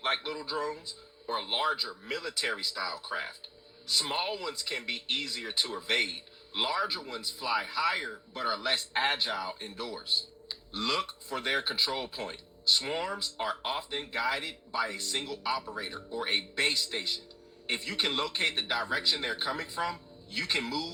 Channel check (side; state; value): both; identical; correlation 1.00